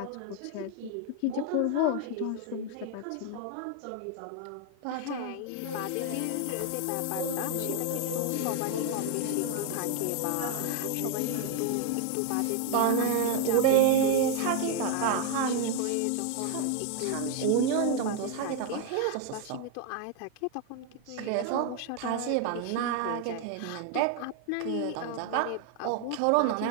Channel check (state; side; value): different; both; correlation 0.01